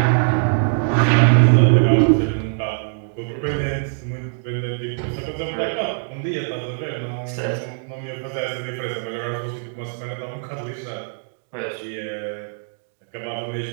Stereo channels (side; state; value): left; silent; 60 dB below the other